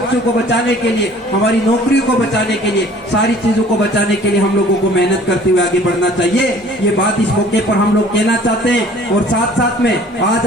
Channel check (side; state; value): both; normal; correlation 0.51